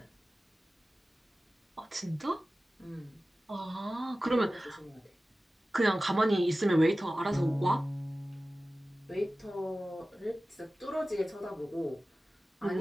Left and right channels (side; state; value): both; normal; correlation 0.96